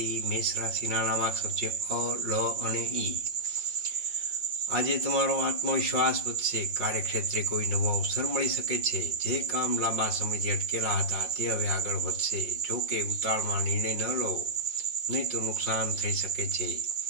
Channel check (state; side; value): late; left; 5.6 ms